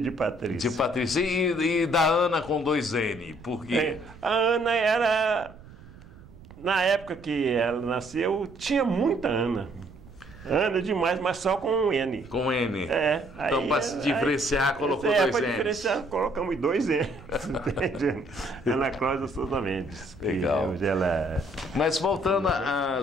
de Patrícia. De Patrícia e da Ana com 2 N, por quê? A Ana era, na época que ela nasceu, tinha muita Ana. Ana demais, mas só com um N. Com N. Então, para se diferenciar, colocou 2 N's. Para diferenciar, colocamos 2 N's. Entende? Ana Cláudia Souza Mendes. Legal. Hoje ela... Mas voltando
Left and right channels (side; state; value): right; noise; rumble, 20 dB below the sound